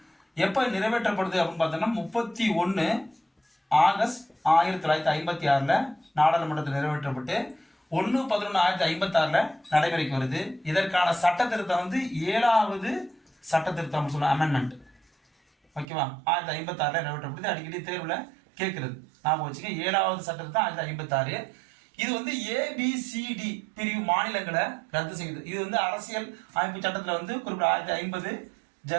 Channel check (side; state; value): left; drops out; at 15.9 s